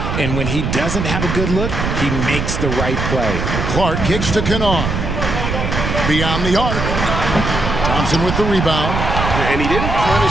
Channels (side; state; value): right; noise; rumble, 2 dB below the sound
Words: and when he doesn't have a good look, he makes the right play. Clark kicks to Kennard. Beyond the arc. Thompson with the rebound. And he didn't